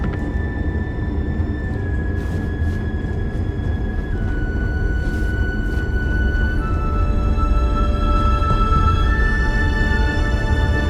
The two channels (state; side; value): identical; both; correlation 1.00